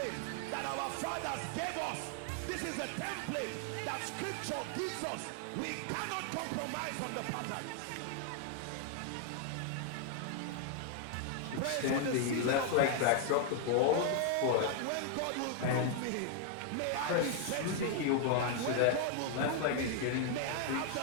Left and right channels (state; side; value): different; both; correlation 0.00